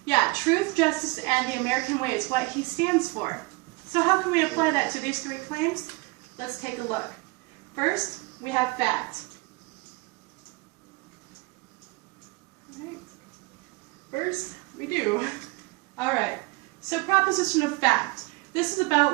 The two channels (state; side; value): quieter; left; 25.1 dB